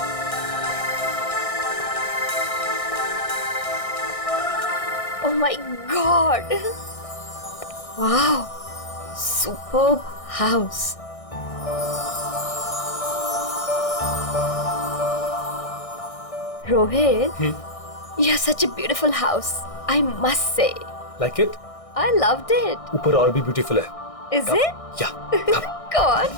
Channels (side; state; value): right; late; 1.6 ms